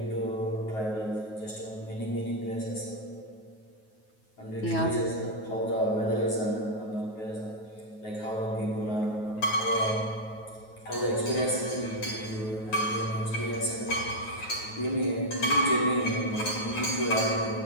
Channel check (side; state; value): right; late; 9.3 ms